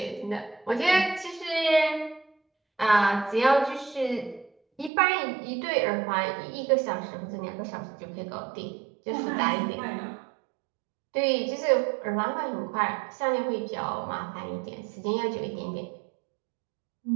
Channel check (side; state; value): left; drops out; at 4.9 s